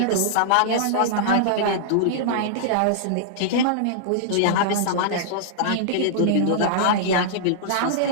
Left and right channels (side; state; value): both; different; correlation -0.02